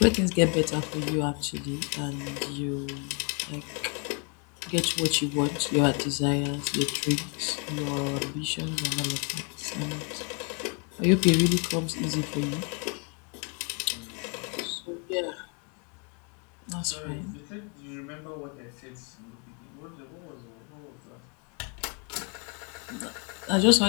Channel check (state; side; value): quieter; right; 36.6 dB